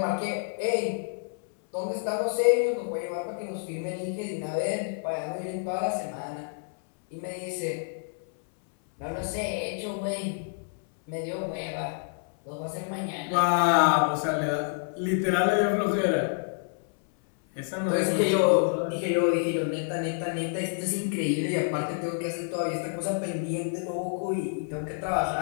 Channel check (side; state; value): right; silent; 59 dB below the other